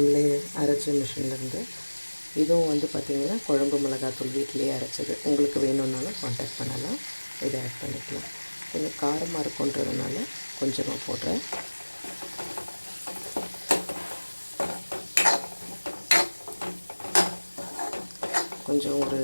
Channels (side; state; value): both; inverted; correlation -1.00